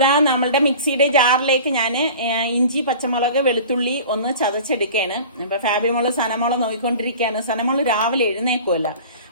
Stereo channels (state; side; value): inverted; both; correlation -0.40